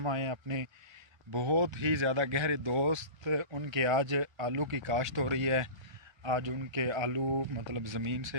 आए हैं अपने बहुत ही ज़्यादा गहरे दोस्त उनके आज आलू की काश्त हो रही है। आज उनके आलू मतलब ज़मीन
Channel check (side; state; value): left; late; 1.3 ms